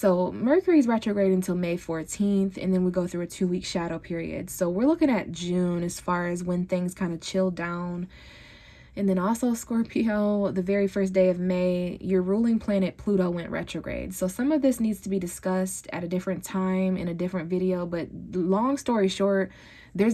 Mercury's retrograde until May 14th, and then we go through a 2-week shadow period. So we're looking at June as far as when things kind of chill down. And then also Scorpio, the very first day of May, your ruling planet Pluto went retrograde. So some of this needs to be discussed at a different time in a different video, but long story short,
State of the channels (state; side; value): identical; both; correlation 1.00